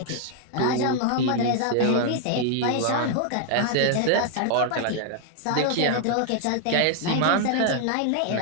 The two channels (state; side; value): different; both; correlation 0.00